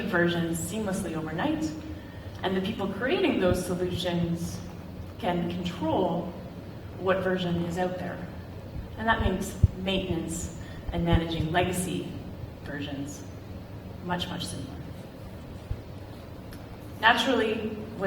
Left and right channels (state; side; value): identical; both; correlation 1.00